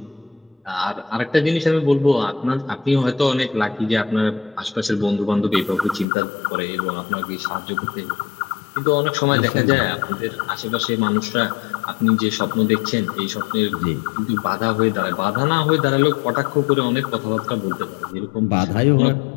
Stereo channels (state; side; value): drops out; right; at 6.1 s